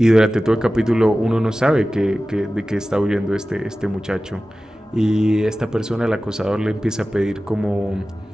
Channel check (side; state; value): both; normal; correlation 0.96